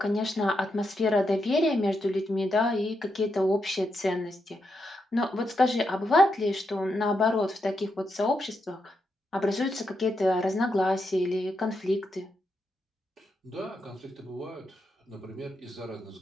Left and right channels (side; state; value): both; normal; correlation 0.83